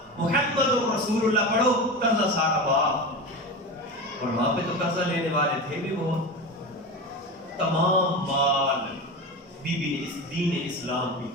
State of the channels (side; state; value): both; normal; correlation 0.25